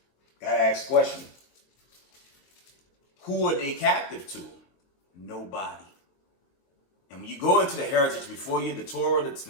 Got to ask a question. Who are they captive to? Nobody. And when you go into the heritage before you, the Torah, the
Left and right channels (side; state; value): right; late; 22 ms